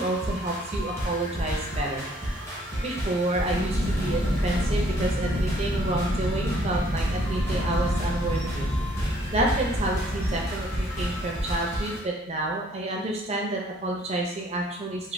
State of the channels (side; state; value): both; normal; correlation 0.62